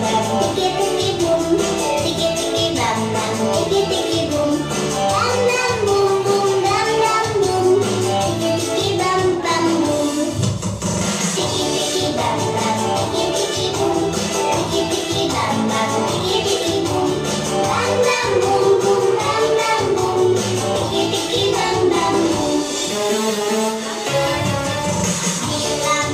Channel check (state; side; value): identical; both; correlation 1.00